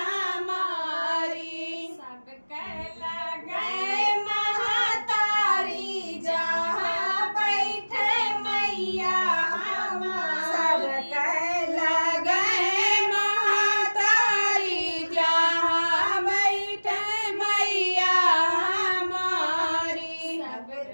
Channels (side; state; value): both; inverted; correlation -1.00